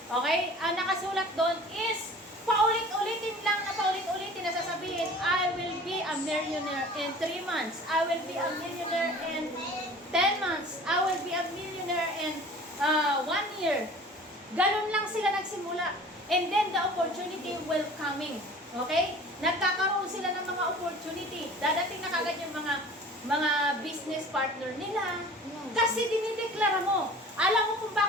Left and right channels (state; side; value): normal; both; correlation 0.44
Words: Okay? Ang nakasulat doon is, paulit-ulitin na sasabihin, I will be a millionaire in 3 months. I will be a millionaire in 10 months. I will be a millionaire in 1 year. Ganun lang sila nagsimula. And then the opportunity will coming. Okay? Nagkakaroon sila ng mga opportunity. Dadating na kagad yung mga business partner nila. Kasi dinideklara mo. Alam mo kung